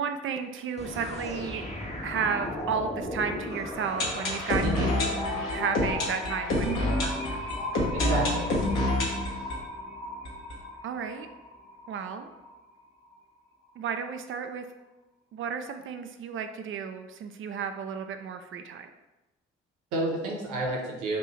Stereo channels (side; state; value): both; normal; correlation 0.34